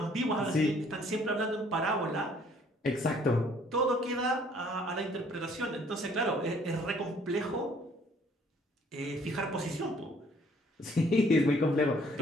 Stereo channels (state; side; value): normal; both; correlation 0.60